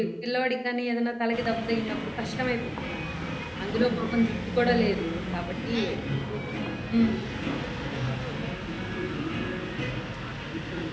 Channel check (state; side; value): identical; both; correlation 1.00